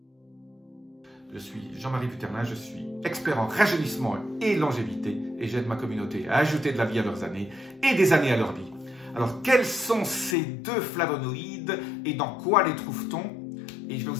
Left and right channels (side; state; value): right; drops out; at 10.4 s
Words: Je suis Jean-Marie Puternin, je suis expert en rajeunissement et longévité et j'aide ma communauté à ajouter de la vie à leurs années et des années à leur vie. Alors, quels sont ces 2 flavonoïdes et dans quoi les trouve-t-on? Et je vais